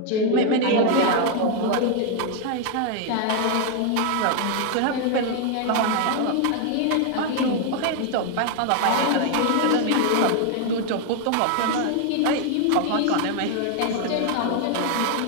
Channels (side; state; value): both; different; correlation 0.01